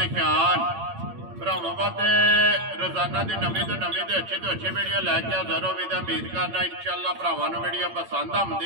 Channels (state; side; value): late; left; 8.8 ms